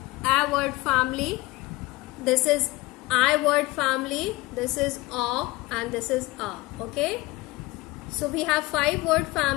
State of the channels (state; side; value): quieter; right; 21.1 dB